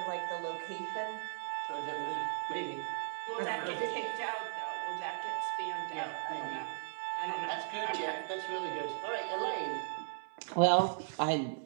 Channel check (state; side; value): silent; left; 53 dB below the other